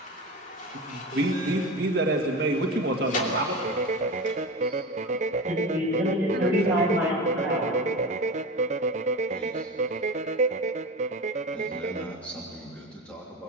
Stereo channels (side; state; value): both; normal; correlation 0.27